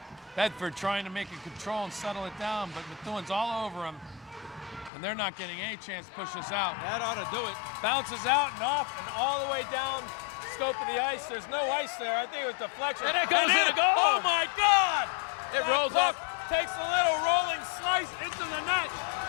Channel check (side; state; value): right; drops out; at 4.9 s